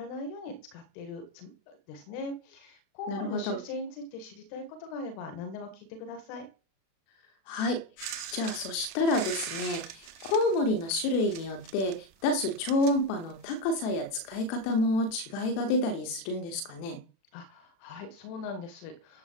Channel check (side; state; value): right; late; 36 ms